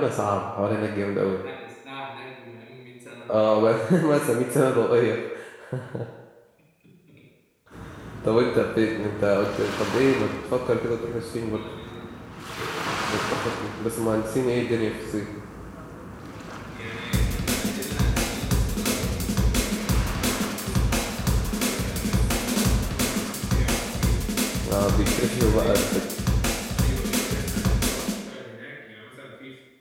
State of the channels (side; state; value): both; identical; correlation 1.00